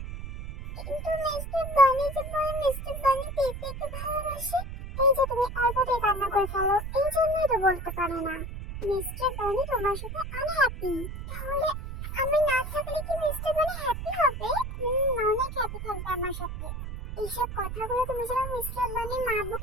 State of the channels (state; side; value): noise; right; rumble, 7 dB below the sound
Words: কিন্তু মিস্টার বানি যে বলে মিস্টার বানি পেঁপেকে ভালোবাসে। এই যে তুমি অল্পতে কান্না করে ফেলো, এই জন্যই তো বলতে পারে না। মিস্টার বানি তোমার সাথে আনহ্যাপি। তাহলে আমি না থাকলে কি মিস্টার বানি হ্যাপি হবে? অনেক হ্যাপি থাকবে আমার সাথে। তাহলে তুমি যেন মিস্টার বানির মা